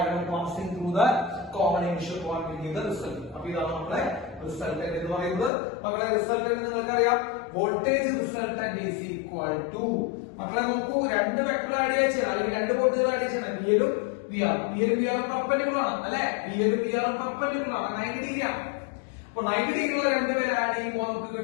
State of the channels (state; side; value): drops out; right; at 5.5 s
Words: passing through the common initial point will give the result. അപ്പൊ ഇതാണ് നമ്മളെ റിസൾട്ടന്റ് എന്ന് പറയുന്നത്. മക്കളെ റിസൾട്ടന്റ് നിങ്ങൾക്കറിയാം, voltage resultant is equal to, മക്കളെ നോക്കൂ, 2 വെക്ടർ ആഡ് ചെയ്യണം അല്ലെങ്കിൽ 2 വോൾട്ടേജ് ആഡ് ചെയ്യണം. വിഎലും വിആറും പെർപെൻഡിക്കുലർ ആണ് അല്ലെ? വിഎലും വിആറും പെർപെൻഡിക്കുലർ ആണ്, 90 ഡിഗ്രി ആണ്. അപ്പൊ 90 ഡിഗ്രിയുള്ള 2 പേര് ആഡ് ചെയ്യുമ്പോൾ നമുക്ക്